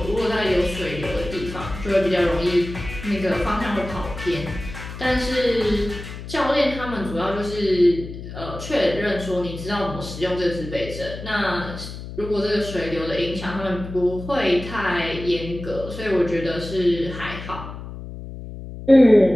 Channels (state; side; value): noise; left; hum, 11 dB below the sound